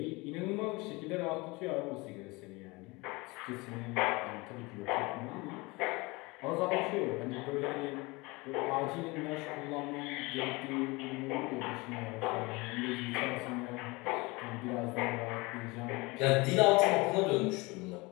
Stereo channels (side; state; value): right; quieter; 24.5 dB